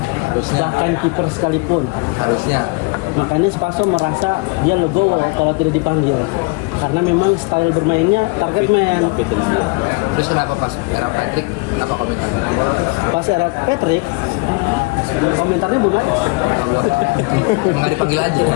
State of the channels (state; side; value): quieter; right; 28.2 dB